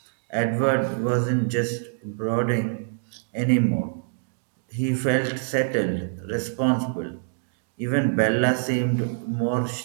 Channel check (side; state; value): left; silent; digital silence